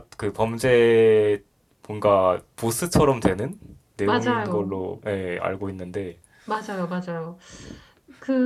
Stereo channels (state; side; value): identical; both; correlation 1.00